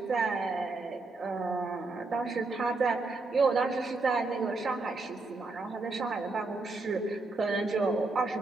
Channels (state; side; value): quieter; left; 3.5 dB